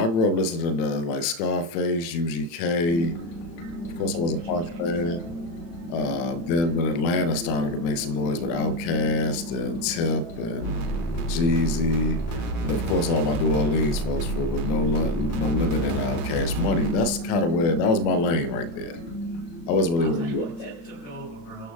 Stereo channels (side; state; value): right; late; 36 ms